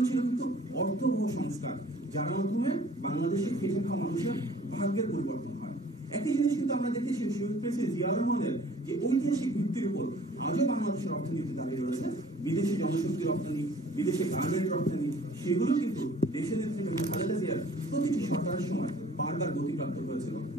ছিল কিন্তু অর্থবহ সংস্কার, যার মাধ্যমে বাংলাদেশে খেটে খাওয়া মানুষের ভাগ্যের পরিবর্তন হয়। একই জিনিস কিন্তু আমরা দেখেছি শহীদ প্রেসিডেন্ট জিয়াউর রহমানের যে ঐতিহাসিক ভিত্তির উপর আজও বাংলাদেশের অর্থনীতি দাঁড়িয়ে রয়েছে। বিদেশি জনশক্তি রপ্তানি, বিদেশে গার্মেন্ট রপ্তানি, সেগুলো কিন্তু দেশের নেতৃত্বে খালেদা জিয়ার প্রতিটি সরকারের সময় বারবার গতিপ্রাপ্ত হয়েছিল।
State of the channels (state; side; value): normal; both; correlation 0.52